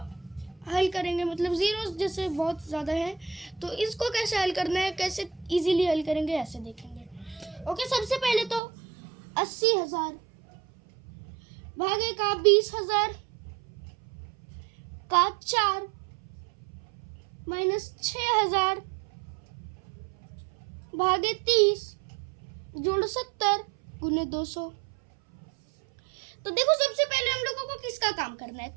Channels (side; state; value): left; drops out; at 8.6 s